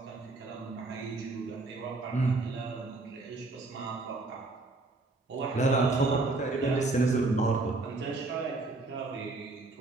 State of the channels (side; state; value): left; quieter; 3.3 dB